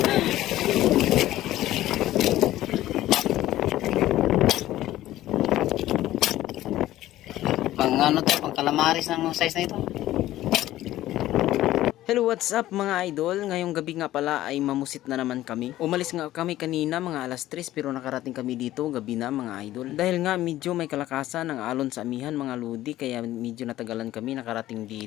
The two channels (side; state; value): right; quieter; 14.7 dB